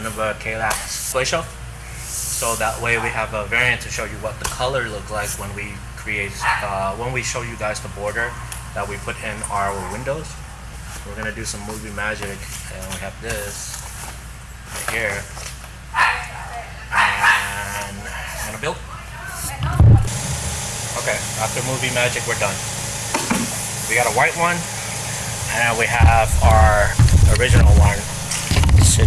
Ikea Shelf. So that way we have a variant to show you what the color look like when we when we show you guys the border that we put in our windows. We're gonna do some movie magic, and we have this right here, and I'm gonna build. Okay, after movie magic, we're done. We got a white one, and we have our original one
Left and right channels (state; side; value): identical; both; correlation 1.00